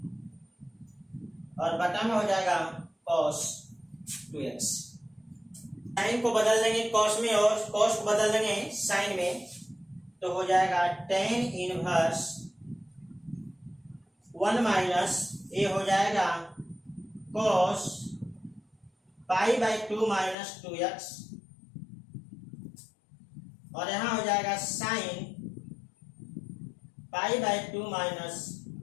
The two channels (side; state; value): right; drops out; at 20.4 s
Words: और बटा में हो जाएगा cos 2x। साइन को बदल देंगे कॉस में और कॉस को बदल देंगे साइन में, तो हो जाएगा tan इनवर्स 1 माइनस ये हो जाएगा cos pi by 2 minus 2x और यहां हो जाएगा sine pi by 2 minus